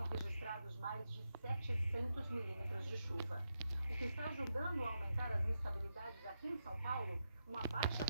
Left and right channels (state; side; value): inverted; both; correlation -0.86